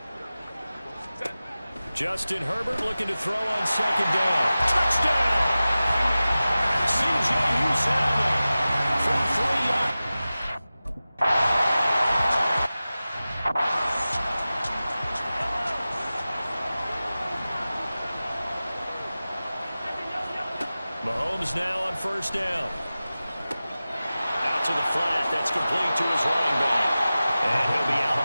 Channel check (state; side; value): inverted; both; correlation -0.96